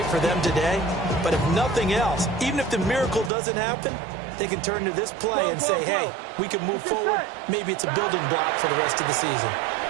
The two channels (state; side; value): drops out; left; at 3.3 s